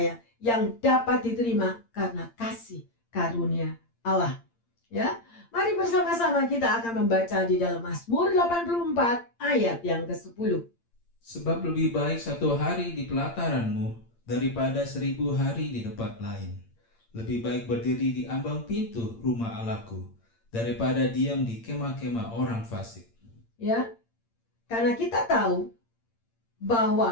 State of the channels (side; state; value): right; late; 8.7 ms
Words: yang dapat diterima karena kasih karunia Allah. Ya, mari bersama-sama kita akan membaca di dalam Mazmur 84 ayat yang ke-10. Sebab lebih baik 1 hari di pelataranmu daripada 1000 hari di tempat lain. Lebih baik berdiri di ambang pintu rumah Allahku daripada diam di kemah-kemah orang fasik. Ya, karena kita tahu